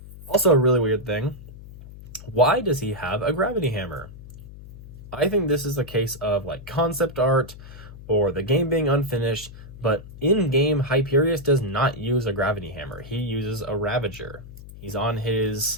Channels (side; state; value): left; noise; hum, 16 dB below the sound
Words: Also, a really weird thing. Why does he have a gravity hammer? I think this is a case of concept art or the game being unfinished, but in-game, Hyperius does not use a gravity hammer. He uses a Ravager. He's on